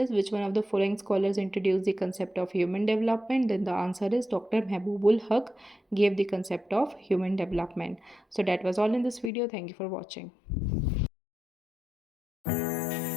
which one of the following scholars introduce the concept of human development. Then the answer is doctor Mahbub ul Haq gave the concept of human development. So that was all in this video. Thank you for watching.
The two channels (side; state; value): right; drops out; at 9.3 s